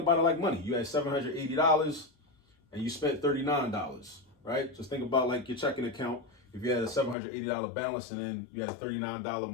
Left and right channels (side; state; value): right; drops out; at 7.2 s